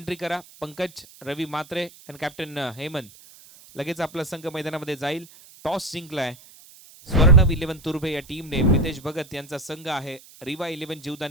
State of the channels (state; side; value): noise; right; hiss, 22 dB below the sound